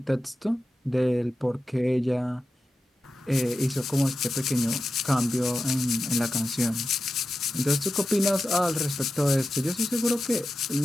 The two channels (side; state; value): both; normal; correlation 0.91